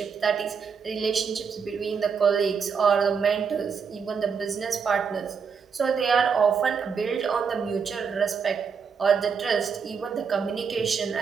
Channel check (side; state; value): left; quieter; 6.1 dB